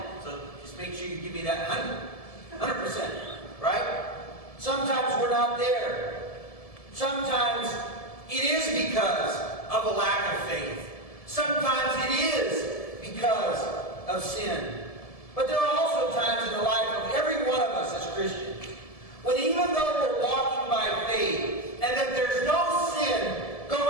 So just make sure you give me that 100%, right? Sometimes we're not there. Sometimes it is because of a lack of faith. Sometimes it is because of sin. But there are also times in the life of every one of us as Christians when even though we're walking by faith and that there's no sin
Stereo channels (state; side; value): late; right; 1.7 ms